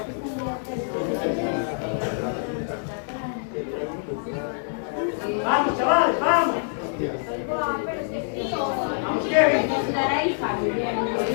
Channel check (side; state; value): right; silent; 61 dB below the other